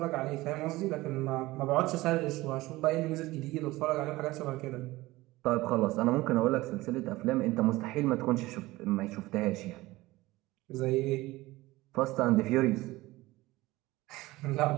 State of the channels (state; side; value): quieter; left; 19.1 dB